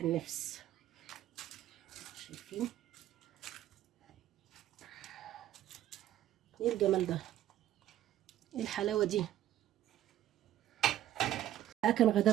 النفس. شايفين ايه الجمال ده؟ ايه الحلاوه دي؟ كان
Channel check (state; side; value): quieter; left; 12.6 dB